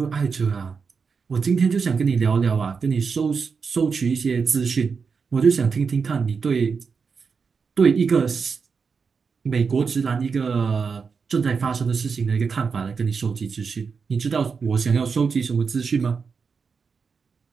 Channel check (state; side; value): quieter; left; 5.5 dB